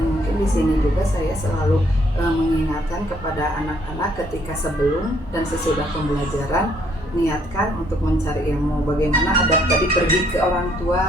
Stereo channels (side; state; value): both; normal; correlation 0.67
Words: mungkin di sini juga saya selalu mengingatkan kepada anak-anak ketika sebelum dan sesudah pembelajaran, niatkan untuk mencari ilmu. Bagaimana adab tadi pergi ke orang